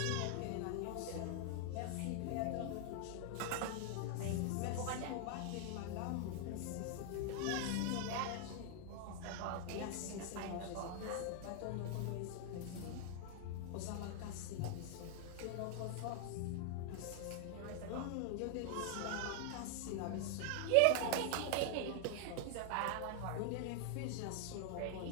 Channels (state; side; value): different; both; correlation 0.00